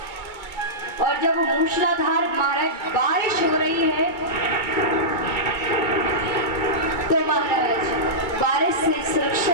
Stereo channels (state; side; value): late; right; 2.2 ms